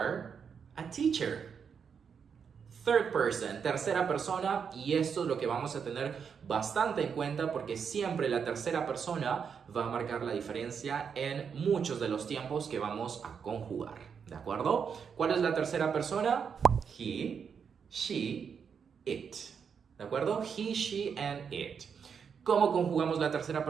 a teacher. Third person, tercera persona, y esto es lo que vamos a tener bastante en cuenta porque siempre la tercera persona va a marcar la diferencia en muchos de los tiempos que vamos a conjugar. ¿De acuerdo? ¿Cuál es la tercera persona? He, she, it. ¿De acuerdo? He, she, and it. ¿Cómo conjugamos la tercera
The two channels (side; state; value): left; quieter; 6.7 dB